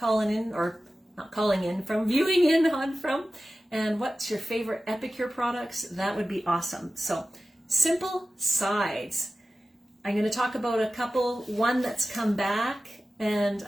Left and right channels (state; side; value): normal; both; correlation 0.95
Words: in, or not calling in from, viewing in on from, and what's your favorite Epicure products. That would be awesome. So, simple sides. I'm going to talk about a couple, one that's come back, and